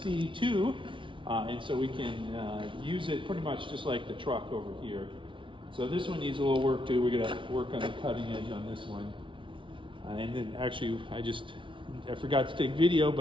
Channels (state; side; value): late; left; 0.25 ms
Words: and so we can use it pretty much just like the truck over here. So this one needs a little work too. We're gonna work on the cutting edge on this one. And then actually, I forgot to take video,